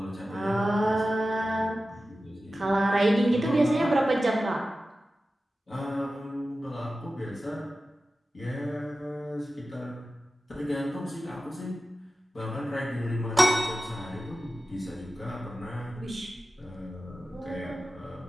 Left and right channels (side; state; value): both; normal; correlation 0.94